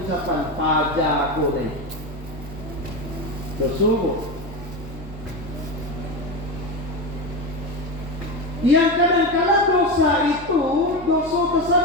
ucapan pajak aku ni. Dosa bu. Yang kadang-kadang dosa itu dosa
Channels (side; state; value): both; normal; correlation 0.18